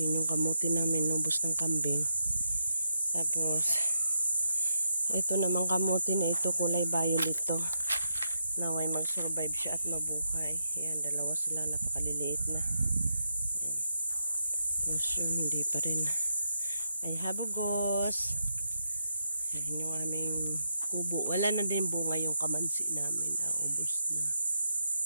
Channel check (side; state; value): both; inverted; correlation -0.83